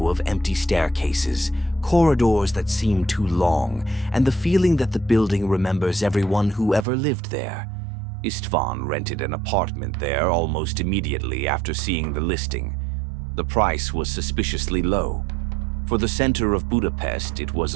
of empty staircases, corridors that seem too long, and the feeling that the building remembers everyone who ever lived there. István rented an apartment there almost immediately after seeing the listing. The price was suspiciously low. For the center of Budapest, it was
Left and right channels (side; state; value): left; drops out; at 6.9 s